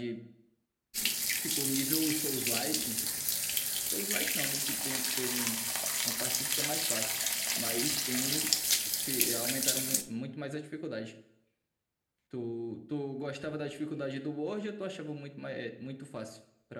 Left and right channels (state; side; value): identical; both; correlation 1.00